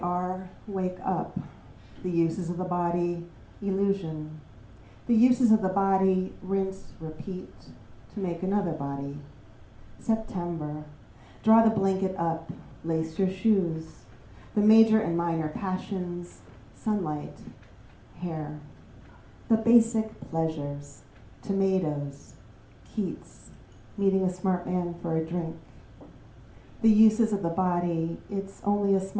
wake up. The uses of the body, illusion. The uses of the body, rinse, repeat, to make another body. September, draw the blanket up, lace your shoes. The major and minor passions, sunlight, hair. The basic pleasures, tomatoes, Keats, meeting a smart man for a drink. The uses of the body, it's only a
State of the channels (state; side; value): identical; both; correlation 1.00